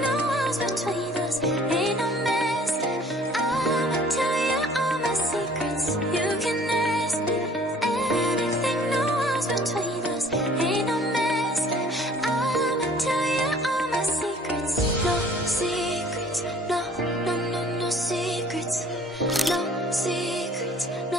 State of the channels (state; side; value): normal; both; correlation 0.53